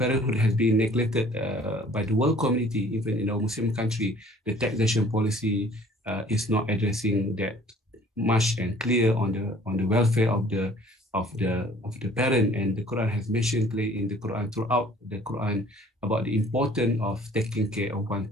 has been neglected by the world community, even in our Muslim country. The taxation policy is not addressing that much and clear on the welfare of the parent. And the Quran has mentioned clearly in the Quran, throughout the Quran, about the importance of taking care of one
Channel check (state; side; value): normal; both; correlation 0.53